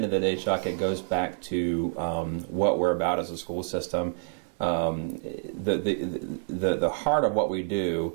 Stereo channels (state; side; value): silent; left; digital silence